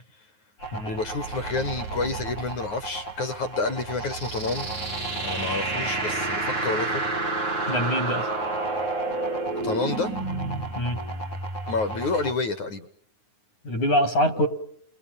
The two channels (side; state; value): right; late; 9.5 ms